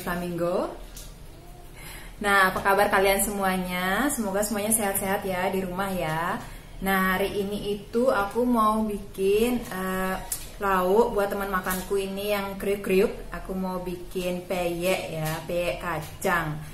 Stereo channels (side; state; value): both; identical; correlation 1.00